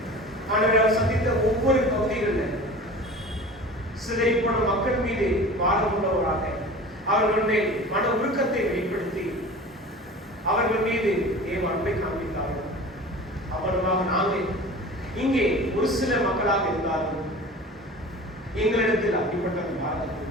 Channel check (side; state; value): both; normal; correlation 0.38